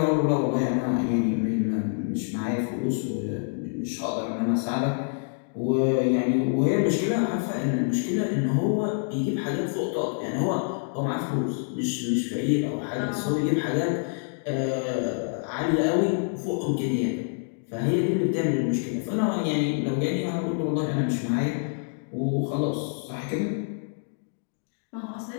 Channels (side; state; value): right; silent; 56 dB below the other